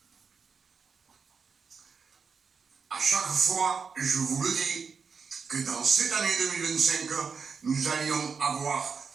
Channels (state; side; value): quieter; left; 5.6 dB